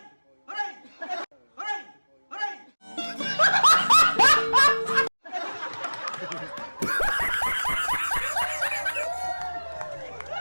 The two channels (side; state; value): both; inverted; correlation -1.00